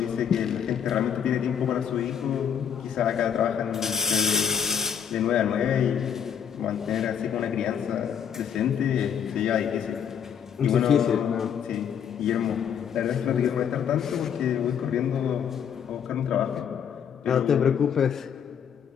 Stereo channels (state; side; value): quieter; right; 8.1 dB